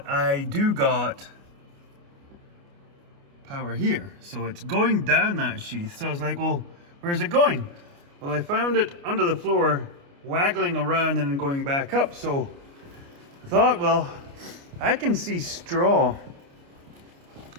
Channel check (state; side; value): late; left; 29 ms